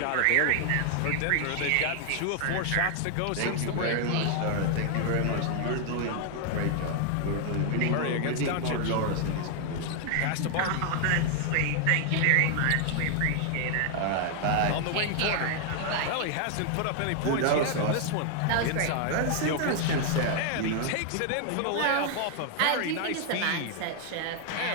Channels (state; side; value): different; both; correlation 0.00